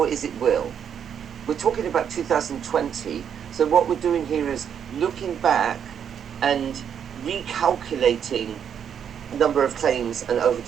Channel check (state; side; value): quieter; left; 8.2 dB